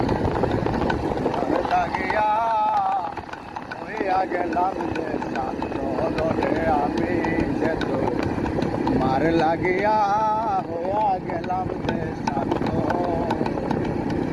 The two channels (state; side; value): identical; both; correlation 1.00